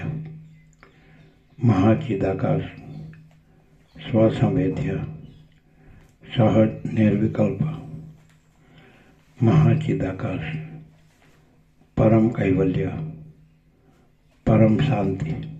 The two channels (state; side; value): identical; both; correlation 1.00